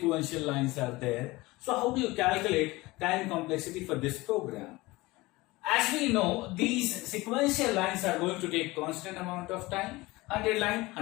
lines are there. So how do you calculate time complexity for this program? As we know, these sequential lines are going to take constant amount of time. 100 line,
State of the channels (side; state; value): right; quieter; 21.1 dB